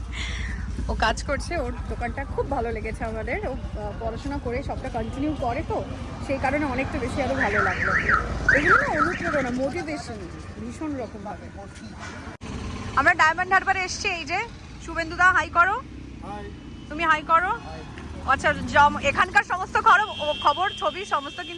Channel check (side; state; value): both; identical; correlation 1.00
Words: ও কাজ করছে, ওর দোকানটা খুব ভালো লেগেছে আমাদের। ও পড়াশোনা করে সবটা কন্টিনিউ করে, তো সেই কারণে অনেকটা বেশি আরো ভালো লাগলো। এগুলো না অনুপ্রেরণা, মোটিভেশন ভীষণ রকম ভাবে। আমরা ডায়মন্ড হারবারে এসছি। এই যে শুভেন্দুদা হাই করো। তুমি হাই করো। আচ্ছা, এখানকার সমস্ত খবর ছবি সমস্ত